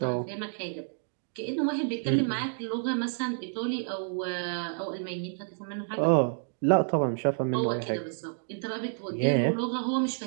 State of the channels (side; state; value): left; silent; digital silence